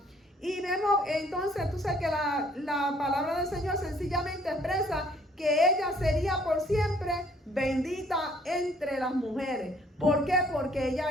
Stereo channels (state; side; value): normal; both; correlation 0.61